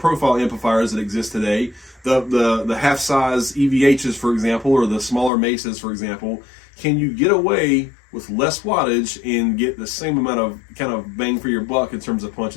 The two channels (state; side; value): drops out; right; at 5.3 s